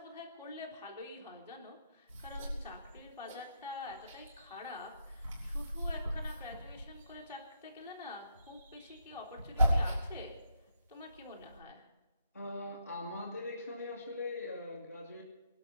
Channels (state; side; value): inverted; both; correlation -0.77